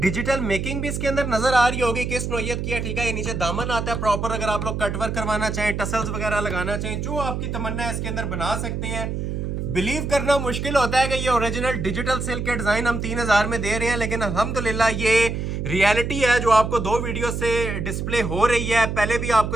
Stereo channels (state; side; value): noise; right; hum, 3 dB below the sound